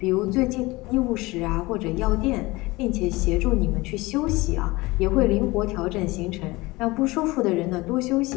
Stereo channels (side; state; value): right; quieter; 21.7 dB